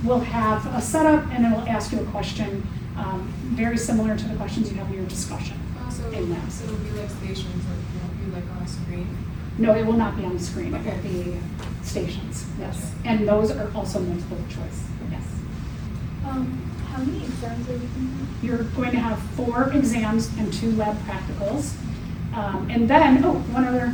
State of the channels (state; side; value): identical; both; correlation 1.00